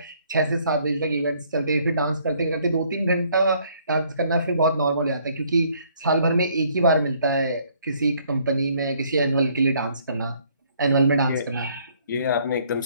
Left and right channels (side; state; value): both; inverted; correlation -0.64